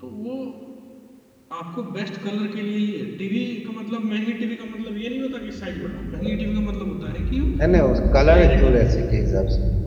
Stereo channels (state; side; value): identical; both; correlation 1.00